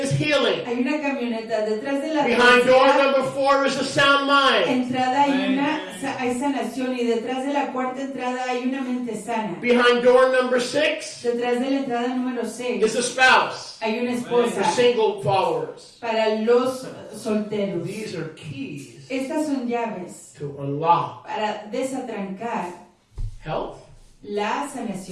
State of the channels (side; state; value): both; identical; correlation 1.00